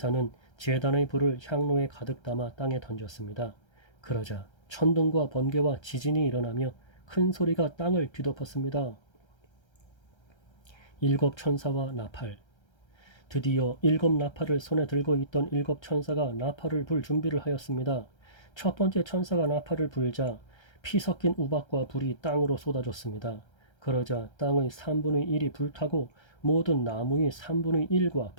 제단의 불을 향로에 가득 담아 땅에 던졌습니다. 그러자 천둥과 번개와 지진이 일어나며 큰 소리가 땅을 뒤덮었습니다. 7 천사와 나팔. 드디어 7 나팔을 손에 들고 있던 7 천사가 나팔을 불 준비를 하였습니다. 첫 번째 천사가 나팔을 불자 피 섞인 우박과 불이 땅으로 쏟아졌습니다. 그러자 땅의 3분의 1이 불타고 모든 나무의 3분의 1과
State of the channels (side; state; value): right; late; 1.3 ms